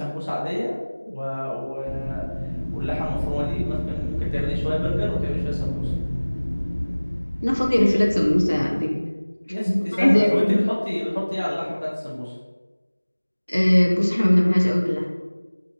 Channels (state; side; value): inverted; both; correlation -1.00